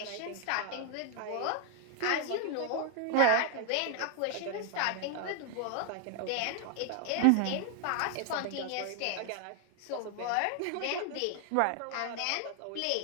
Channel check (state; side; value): different; both; correlation 0.00